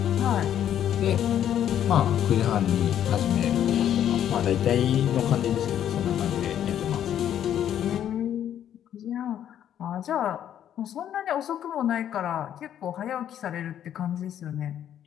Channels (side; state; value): right; quieter; 10.3 dB